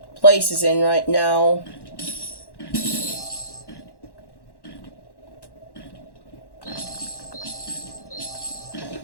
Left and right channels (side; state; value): right; late; 1.1 ms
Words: place is in right now.